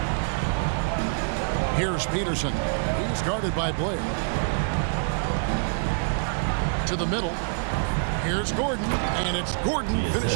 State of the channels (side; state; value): left; silent; digital silence